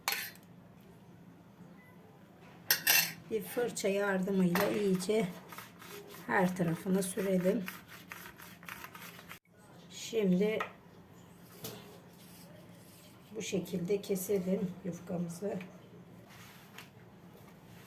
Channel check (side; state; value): both; identical; correlation 1.00